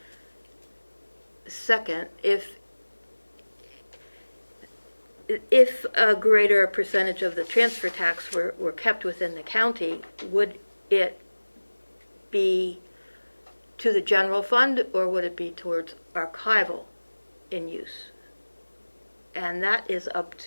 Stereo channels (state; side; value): inverted; both; correlation -1.00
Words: Second, if a greater percentage of the transfer tax were kept within the county, would it be to the general fund, or would it be towards archival in use? And that is up